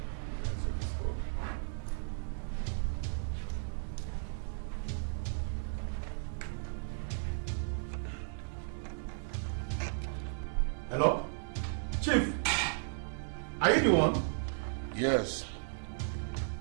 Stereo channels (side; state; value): left; silent; digital silence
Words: Hello? Chief, are you the one? Yes.